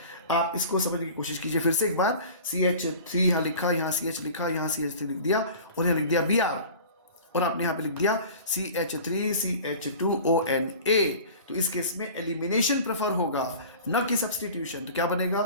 आप इसको समझने की कोशिश कीजिए फिर से एक बार। CH3 यहाँ लिखा, यहाँ CH लिखा, यहाँ CH3 लिख दिया और यहाँ लिख दिया Br और आपने यहाँ पे लिख दिया CH3 CH2ONA। तो इस केस में एलिमिनेशन प्रेफर होगा न कि सब्स्टिट्यूशन। तो क्या बनेगा,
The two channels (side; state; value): both; inverted; correlation -0.40